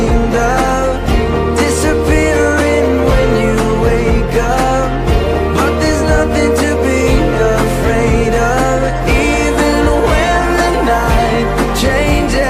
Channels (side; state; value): both; identical; correlation 1.00